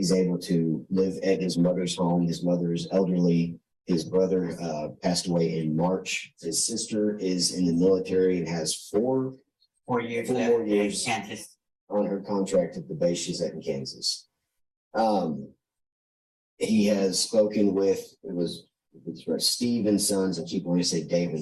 able to live at his mother's home. His mother is elderly. His brother passed away in March. His sister is in the military and has 4 years Four left more in years. Kansas. on her contract at the base she's at in Kansas. He has spoken with, it's right, Steve and Sons. I keep wanting to say Dave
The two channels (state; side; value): identical; both; correlation 1.00